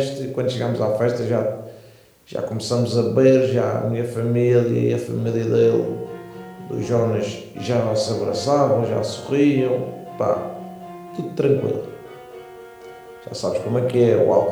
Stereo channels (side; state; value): both; identical; correlation 1.00